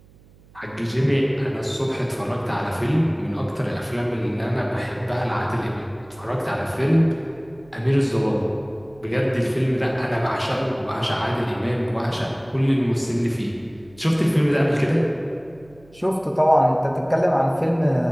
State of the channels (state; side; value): noise; right; hum, 26 dB below the sound